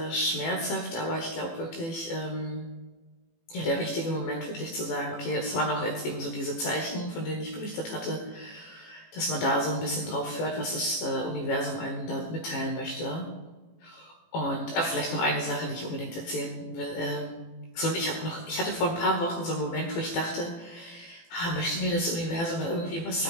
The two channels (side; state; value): right; late; 18 ms